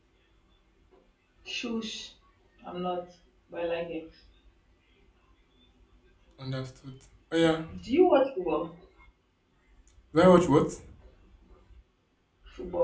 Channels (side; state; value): both; identical; correlation 1.00